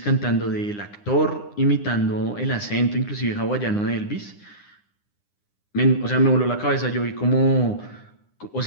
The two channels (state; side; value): late; right; 9.8 ms